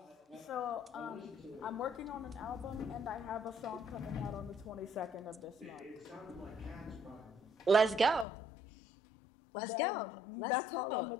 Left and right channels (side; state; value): right; drops out; at 8.2 s